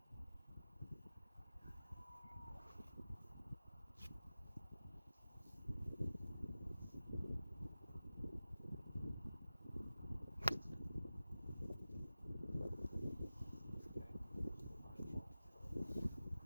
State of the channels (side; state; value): both; inverted; correlation -0.96